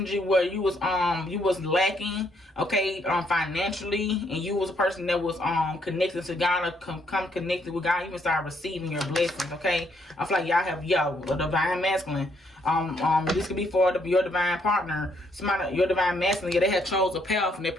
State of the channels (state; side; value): normal; both; correlation 0.71